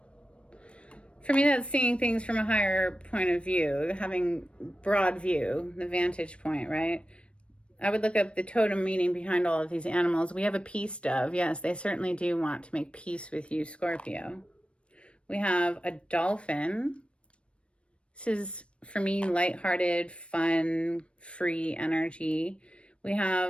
For me, that's seeing things from a higher point of view, having broad view, the vantage point, right? I would look up the totem meaning behind all of these animals. We have a peace dove. Yes, they certainly do want to make peace with you, Scorpio. We have a dolphin. This is, for me, lighthearted, fun, free energy. We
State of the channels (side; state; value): right; late; 0.059 ms